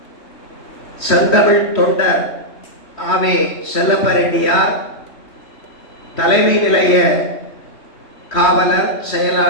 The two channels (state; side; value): late; right; 3.2 ms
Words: செந்தமிழ் தொண்டர் ஆவே செல்லப்பரெட்டியார், தலைமை நிலைய காவலர்